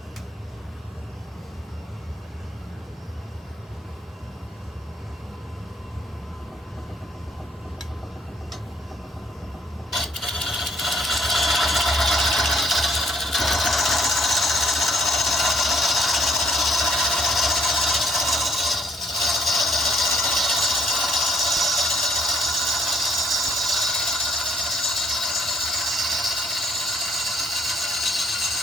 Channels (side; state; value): both; normal; correlation 0.67